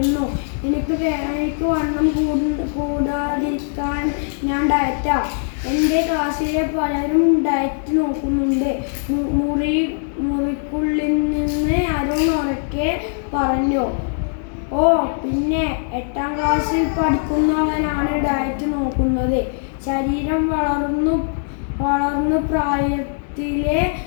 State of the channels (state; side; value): silent; right; digital silence